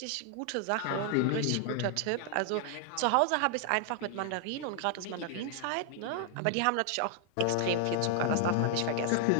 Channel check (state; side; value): different; both; correlation 0.00